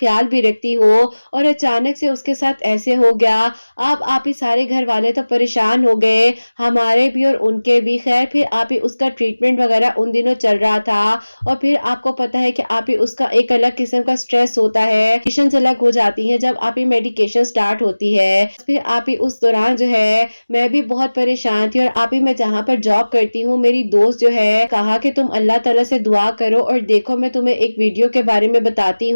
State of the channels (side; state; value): both; inverted; correlation -1.00